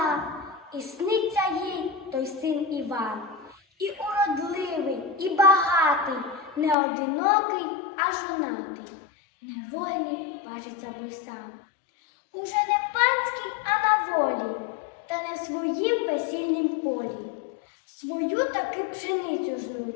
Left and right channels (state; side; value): drops out; right; at 6.8 s